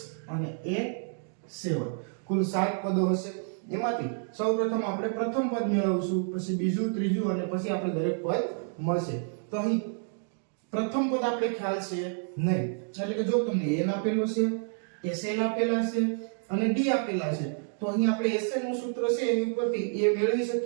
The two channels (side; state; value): left; silent; 58 dB below the other